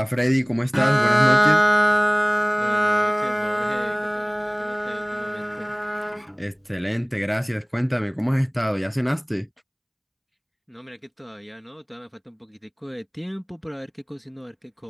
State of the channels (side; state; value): both; identical; correlation 1.00